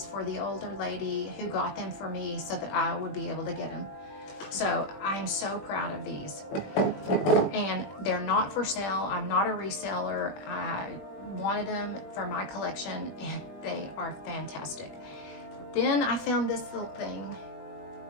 for the older lady who got them for me so that I would be able to get them. So I'm so proud of these. And they're not for sale. I'm not a reseller. I wanted them for my collection, and they are fantastic. Then I found this little thing.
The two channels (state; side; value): late; right; 20 ms